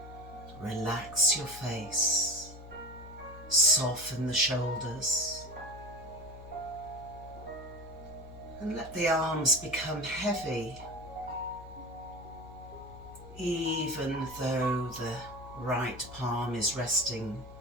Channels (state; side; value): noise; left; hum, 15 dB below the sound